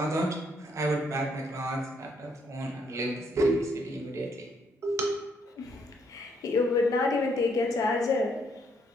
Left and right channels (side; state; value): both; normal; correlation 0.71